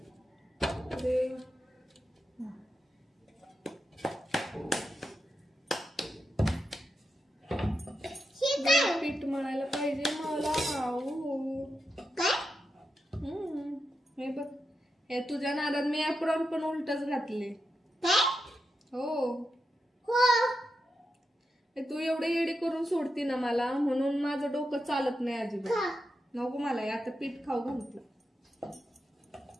पीठ मळायला पाहिजे मला. हे बघ हे तुझ्या नादात मी एप्रॉन पण उलटच घातले. हो तू एवढं येडी करून सोडती ना मला, म्हणून माझं डोकं चालत नाही अजिबात. नको मला आता पीठ खाऊ घालते.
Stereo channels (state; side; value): normal; both; correlation 0.87